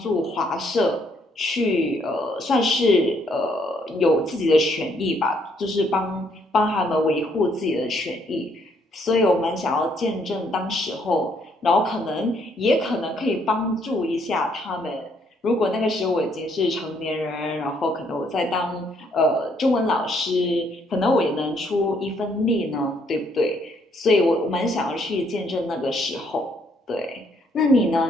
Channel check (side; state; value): both; normal; correlation 0.69